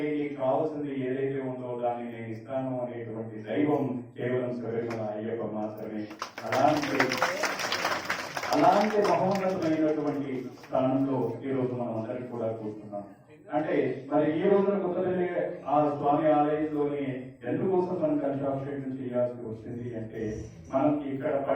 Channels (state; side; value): identical; both; correlation 1.00